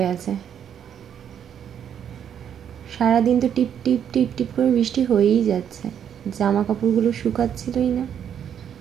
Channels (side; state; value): left; quieter; 8.8 dB